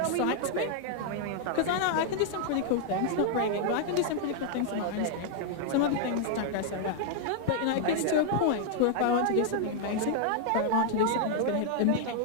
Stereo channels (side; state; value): both; different; correlation 0.00